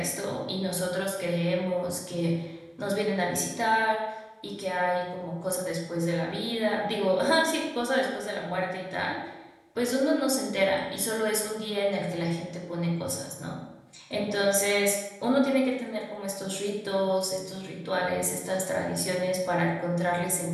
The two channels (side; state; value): both; identical; correlation 1.00